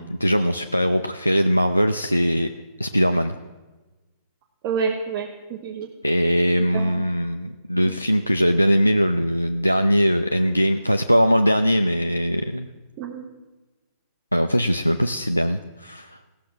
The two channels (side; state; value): both; inverted; correlation -0.94